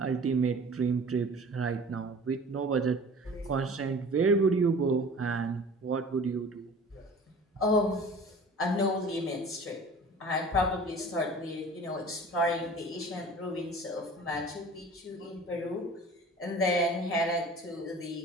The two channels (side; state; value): both; normal; correlation 0.43